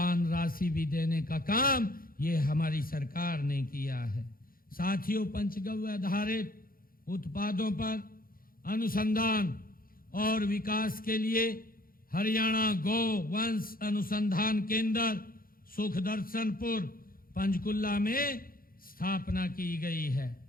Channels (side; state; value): right; late; 0.42 ms